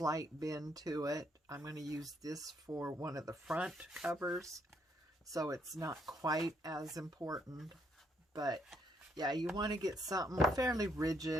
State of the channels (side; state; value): both; normal; correlation 0.72